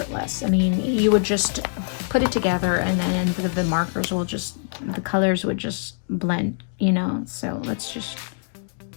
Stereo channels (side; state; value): right; silent; digital silence